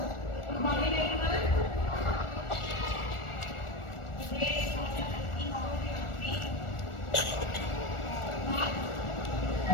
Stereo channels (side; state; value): right; late; 1.4 ms